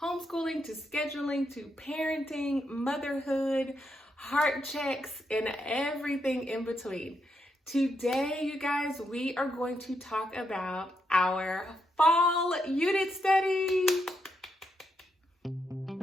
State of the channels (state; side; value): normal; both; correlation 0.81